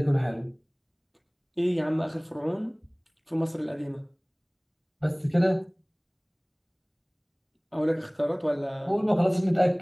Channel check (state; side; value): identical; both; correlation 1.00